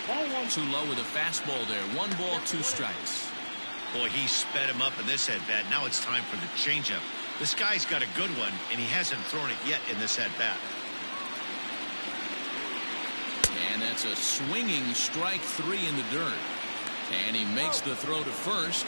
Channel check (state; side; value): inverted; both; correlation -1.00